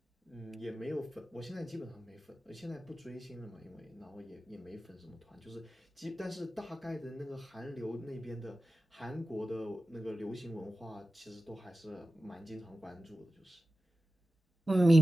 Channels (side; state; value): both; normal; correlation 0.95